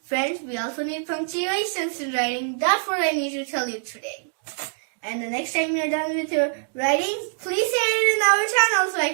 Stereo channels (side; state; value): left; silent; digital silence